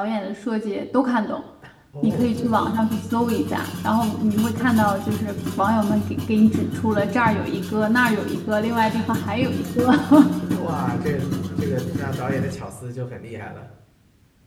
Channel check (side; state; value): both; identical; correlation 1.00